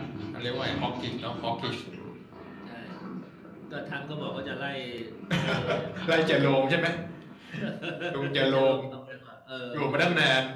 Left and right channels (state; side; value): identical; both; correlation 1.00